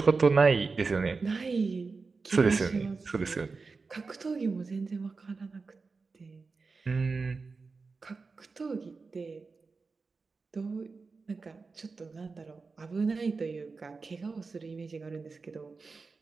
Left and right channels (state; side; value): quieter; left; 4.3 dB